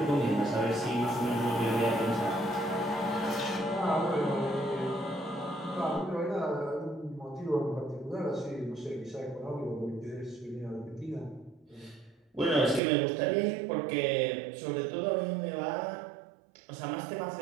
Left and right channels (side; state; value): left; drops out; at 12.8 s